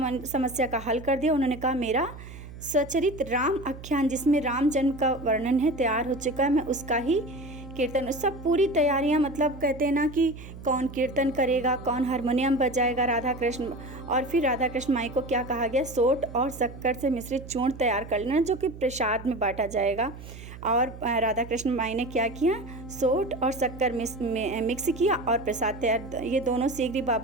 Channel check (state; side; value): noise; right; hum, 14 dB below the sound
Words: समस्या का हल कर दिया। उन्होंने कहा मेरा सचरित राम आख्यान, जिसमें राम जन्म का वर्णन है, तैयार हो चुका है, मैं उसका ही कीर्तन। सब पूरी तैयारियां, मतलब कहते हैं ना कि कौन कीर्तन करेगा, कौन हारमोनियम बजाएगा, राधा कृष्ण। और फिर राधा कृष्ण माई को क्या कहा गया, सोट और शक्कर से मिश्रित चूर्ण तैयार कर लेना, जो कि प्रसाद में बांटा जाएगा। और राधा कृष्ण माई ने क्या किया, सोट और शक्कर मिक्स किया और प्रसाद तैयार। ये दोनों शीघ्र